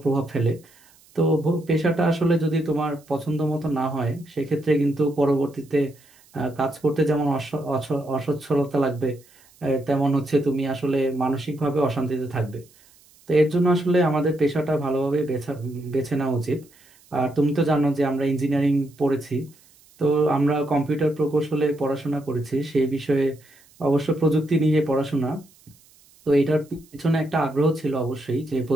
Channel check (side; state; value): right; noise; hiss, 29 dB below the sound